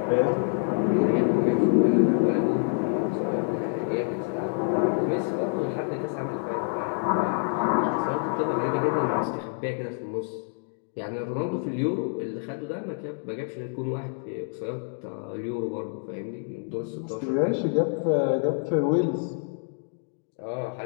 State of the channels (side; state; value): right; silent; 60 dB below the other